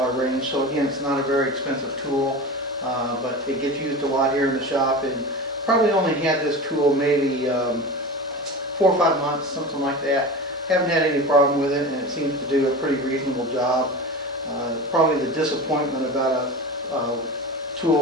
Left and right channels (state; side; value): normal; both; correlation 0.30